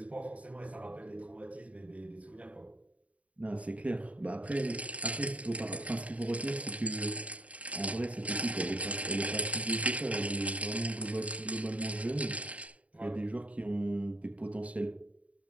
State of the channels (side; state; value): left; late; 0.067 ms